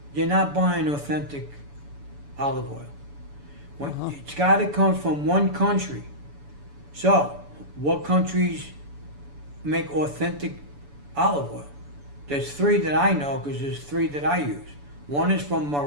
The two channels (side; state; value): left; late; 7.0 ms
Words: you're not buying authentic olive oil. It's got to come from one country. So, what countries make authentic olive oil? There's 3 that I know because there's 3 that I use. One is from